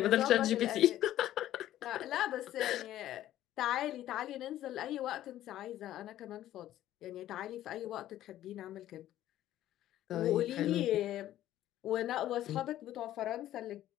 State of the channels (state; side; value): quieter; right; 13.2 dB